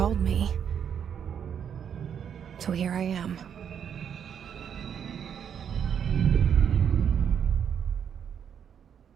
me. So here I am.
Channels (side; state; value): left; quieter; 8.1 dB